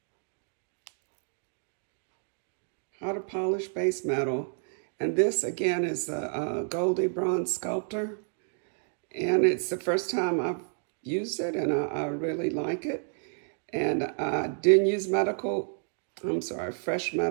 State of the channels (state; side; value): silent; left; 58 dB below the other